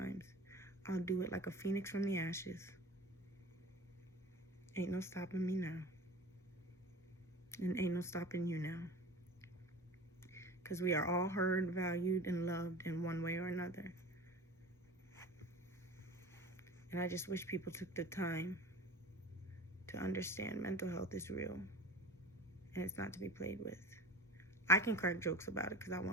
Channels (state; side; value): normal; both; correlation 0.36